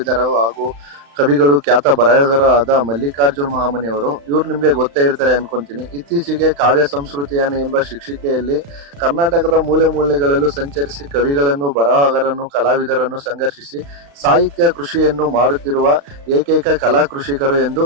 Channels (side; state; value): left; late; 35 ms